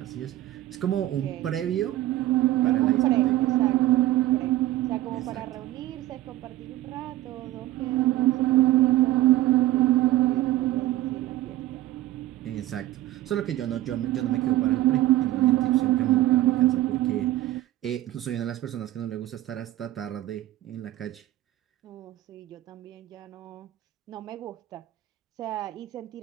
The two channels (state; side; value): quieter; left; 15.2 dB